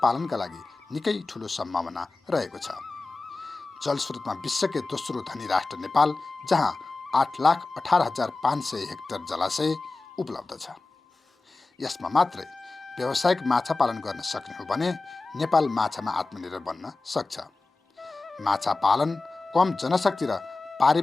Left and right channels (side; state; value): right; quieter; 3.5 dB